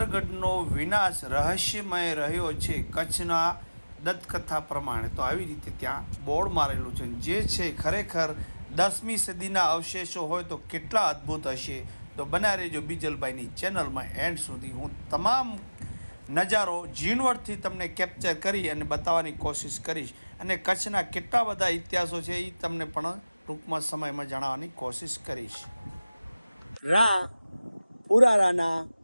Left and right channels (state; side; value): inverted; both; correlation -0.99